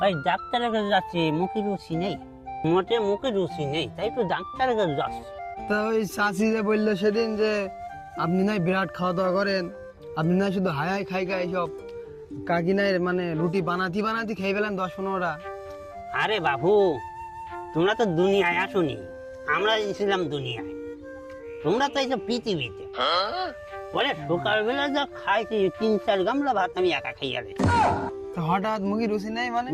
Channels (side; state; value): both; identical; correlation 1.00